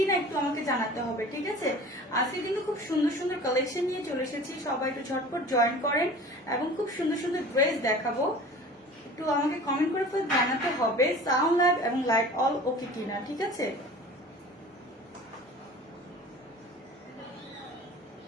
একটু আমাকে জানাতে হবে, ঠিক আছে? আজকে কিন্তু খুব সুন্দর সুন্দর কালেকশন নিয়ে চলে এসেছি। সবাই একটু ঝটপট জয়েন করেন এবং খুব সুন্দর সুন্দর ড্রেস দেখাবো। একটু আমাকে কমেন্ট করে জানাতে হবে সাউন্ড লাইভ এবং লাইট অল ওকে কিনা, ঠিক আছে?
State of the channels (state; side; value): normal; both; correlation 0.41